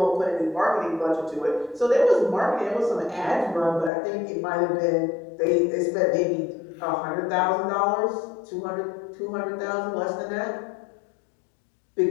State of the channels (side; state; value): right; drops out; at 3.9 s